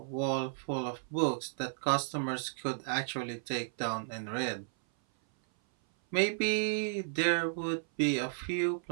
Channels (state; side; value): silent; left; 55 dB below the other